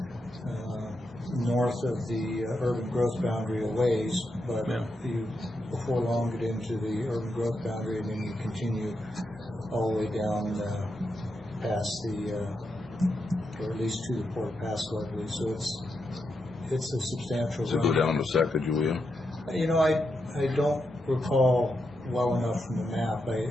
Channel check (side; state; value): both; normal; correlation 0.85